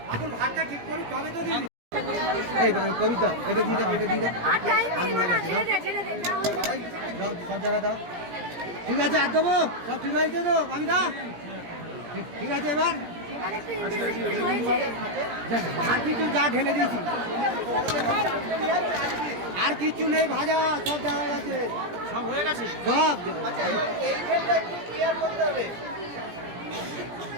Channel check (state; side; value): late; left; 17 ms